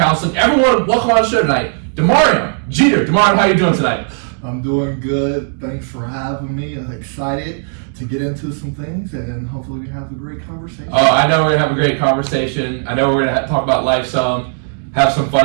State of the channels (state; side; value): silent; left; 57 dB below the other